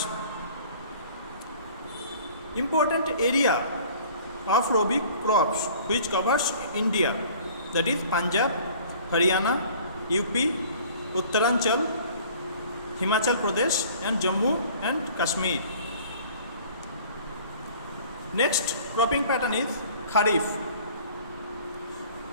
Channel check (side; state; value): both; inverted; correlation -0.49